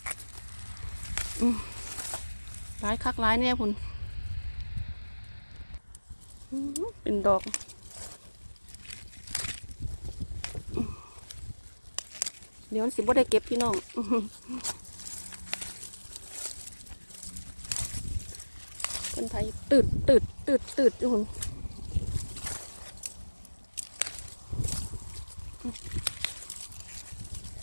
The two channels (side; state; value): both; inverted; correlation -1.00